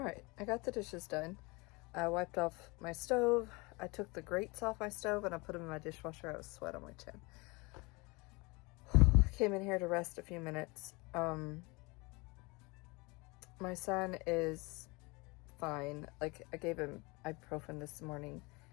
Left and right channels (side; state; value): right; quieter; 26.3 dB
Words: I got the dishes done. I wiped off my stove. I took the grates off my stove and I put them in my dishwasher. I was sweat on my chin. I came in here to rest a few minutes. My son is fine. Like, I gave him ibuprofen this morning